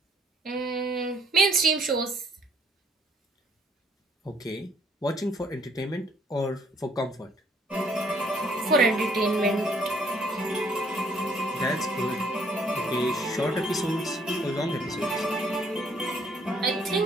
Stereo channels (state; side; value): normal; both; correlation 0.63